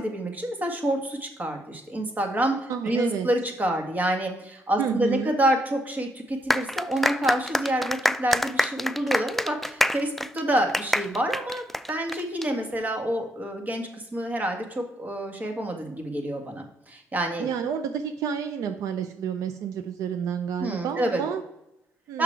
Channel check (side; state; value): both; normal; correlation 0.75